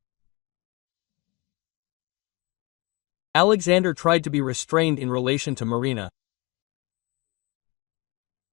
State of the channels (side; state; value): right; quieter; 26.1 dB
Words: Alexander tried to be restrained in relation to Marina.